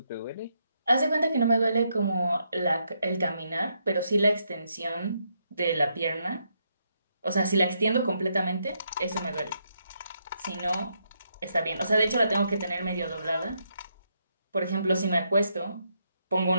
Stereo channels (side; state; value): both; inverted; correlation -0.78